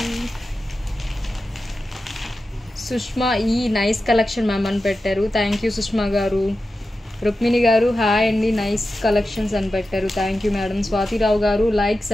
సుష్మా ఈ నైస్ కలెక్షన్ మ్యామ్ అని పెట్టారు. థ్యాంక్ యూ సుష్మా గారు. రుక్మిణి గారు హాయ్ అండి, నైస్ కలెక్షన్స్ అని పెట్టారు. Thank you madam. స్వాతిరావు గారు లైక్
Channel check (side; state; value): both; normal; correlation 0.92